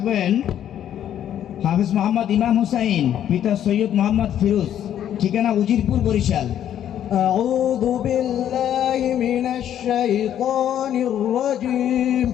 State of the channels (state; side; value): quieter; right; 10.5 dB